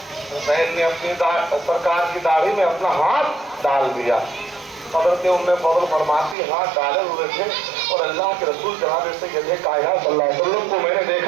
حسین نے اپنی سرکار کی داڑھی میں اپنا ہاتھ ڈال دیا، حضرت ام فضل فرماتی ہاتھ ڈالے ہوئے تھے اور اللہ کے رسول جناب سید کائنات صلی اللہ علیہ وسلم کو میں نے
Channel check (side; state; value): left; drops out; at 6.4 s